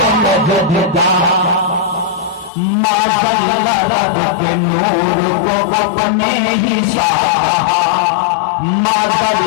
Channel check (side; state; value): right; drops out; at 2.5 s